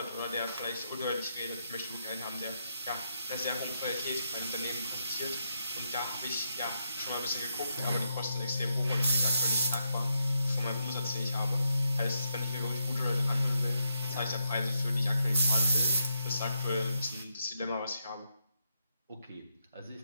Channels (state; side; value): inverted; both; correlation -0.80